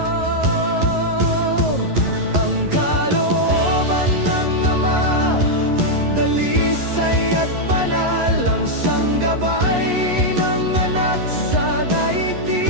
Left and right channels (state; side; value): late; left; 11 ms